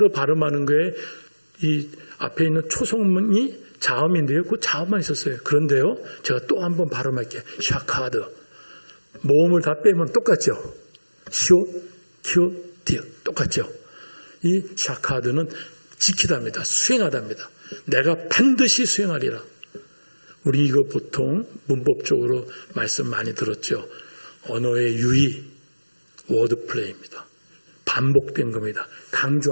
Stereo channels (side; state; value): both; inverted; correlation -1.00